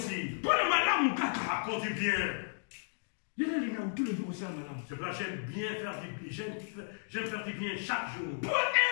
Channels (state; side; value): silent; right; digital silence